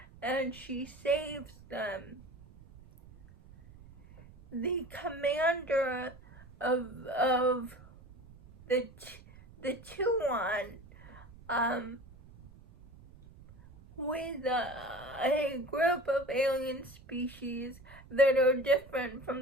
and she saves them. The commander of the Tuan, with a group of alien species that are different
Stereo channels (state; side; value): noise; right; rumble, 21 dB below the sound